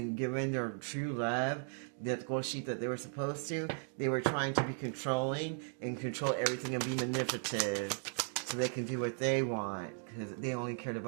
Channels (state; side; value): silent; left; 53 dB below the other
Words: giving their true love, that gold sheet that they were supposed to, they were trying to be controlling and control everything and be manipulative so they can do what they want, because they only cared